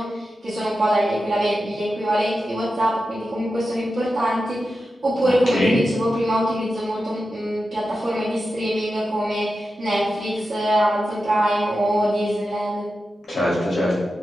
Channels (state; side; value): normal; both; correlation 0.91